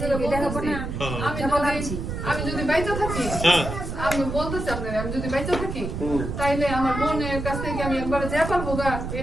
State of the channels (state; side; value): noise; right; rumble, 5 dB below the sound